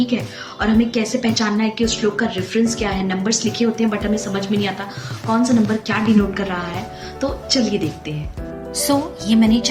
है। और हमें कैसे पहचानना है कि उस श्लोक का रेफरेंस क्या है। नंबर्स लिखे होते हैं बट हमें समझ में नहीं आता कौन सा नंबर क्या डिनोट कर रहा है। तो चलिए देखते हैं। ये मैंने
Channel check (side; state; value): both; identical; correlation 1.00